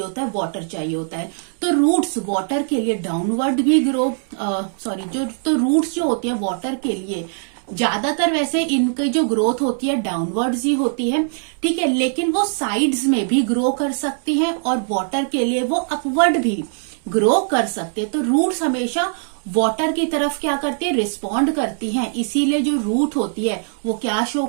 होता है, वाटर चाहिए होता है। तो रूट्स वाटर के लिए डाउनवर्ड भी तो रूट्स जो होती है वाटर के लिए ज्यादातर वैसे इनकी जो ग्रोथ होती है डाउनवर्ड्स ही होती है। ठीक है, लेकिन वो साइड्स में भी ग्रो कर सकती हैं और वाटर के लिए वो अपवर्ड भी ग्रो कर सकते हैं। तो रूट्स हमेशा वाटर की तरफ क्या करती है, रिस्पॉन्ड करती हैं। इसीलिए जो रूट होती है वो क्या शो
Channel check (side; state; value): left; silent; 65 dB below the other